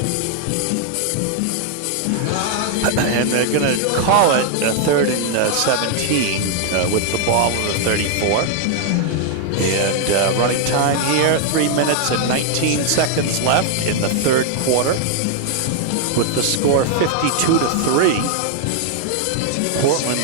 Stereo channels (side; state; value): both; different; correlation 0.00